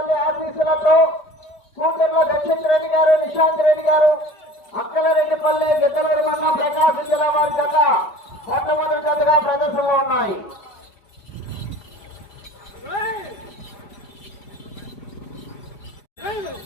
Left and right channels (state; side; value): late; right; 4.9 ms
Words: ఆఫీసులతో కూటర్ల దక్షిత్ రెడ్డి గారు, నిశాంత్ రెడ్డి గారు, అక్కలరెడ్డిపల్లె, గిద్దలూరు మండలం, ప్రకాశం జిల్లా వారి జత మొట్టమొదటి జతగా ప్రదర్శనలో ఉన్నాయి.